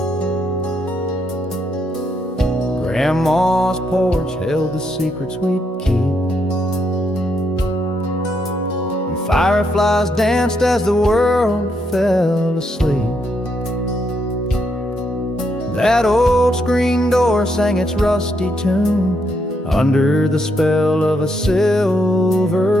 Grandma's porch held the secrets we'd keep, and fireflies danced as the world fell asleep. That old screen door sang its rusty tune under the spell of a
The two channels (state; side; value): normal; both; correlation 0.77